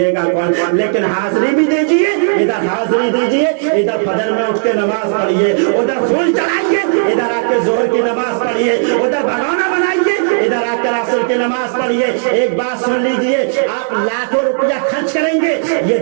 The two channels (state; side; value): silent; left; digital silence